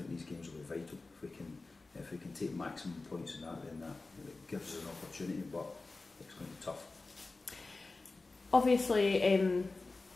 these games will be vital. If we can take maximum points in that, then that gives us an opportunity, but it's going to be tough. Obviously,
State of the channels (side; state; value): right; quieter; 3.5 dB